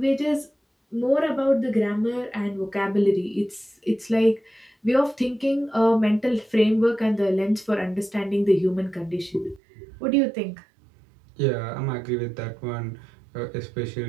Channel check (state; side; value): drops out; left; at 9.6 s